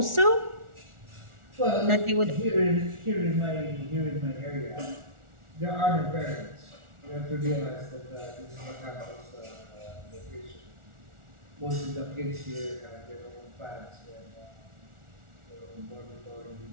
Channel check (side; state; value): left; late; 1.4 ms